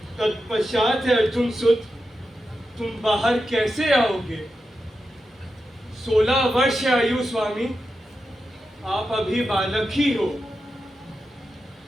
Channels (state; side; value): normal; both; correlation 0.89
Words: तत्पश्चात है अर्जुन सुत तुम बाहर कैसे आओगे? 16 वर्ष आयु स्वामी, आप अभी बालक ही हो।